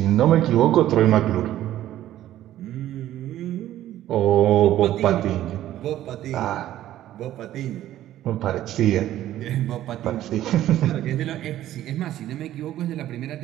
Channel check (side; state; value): left; quieter; 13.2 dB